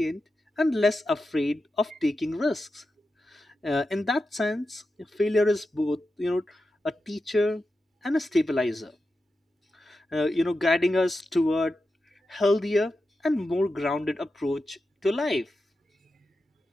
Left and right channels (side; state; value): both; normal; correlation 0.90